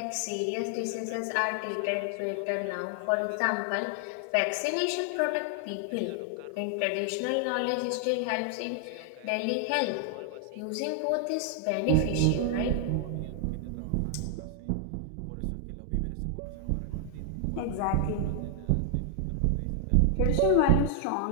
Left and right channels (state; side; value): different; both; correlation 0.00